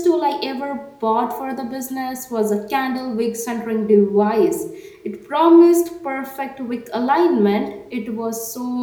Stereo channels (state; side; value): identical; both; correlation 1.00